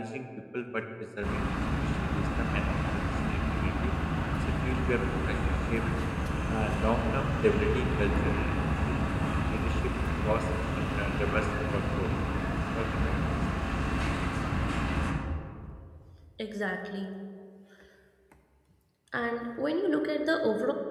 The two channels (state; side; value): identical; both; correlation 1.00